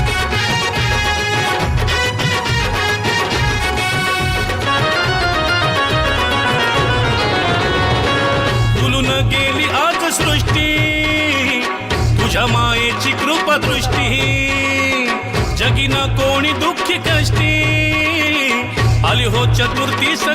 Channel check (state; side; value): identical; both; correlation 1.00